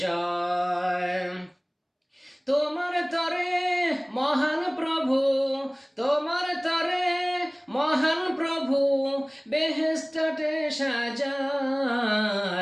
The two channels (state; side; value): identical; both; correlation 1.00